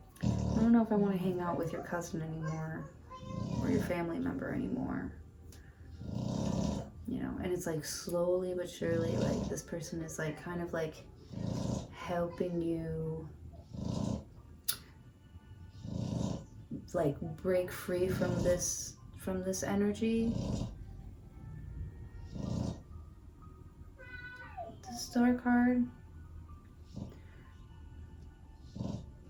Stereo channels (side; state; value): both; identical; correlation 1.00